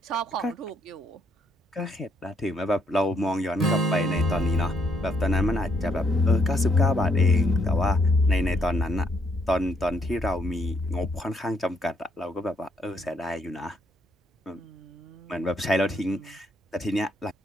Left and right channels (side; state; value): both; normal; correlation 0.72